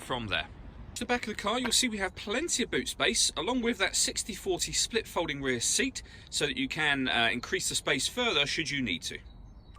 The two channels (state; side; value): identical; both; correlation 1.00